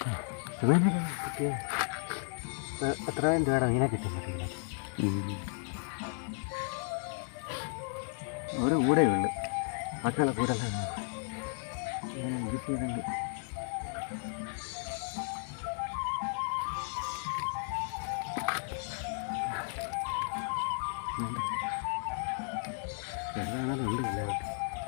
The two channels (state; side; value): silent; right; 55 dB below the other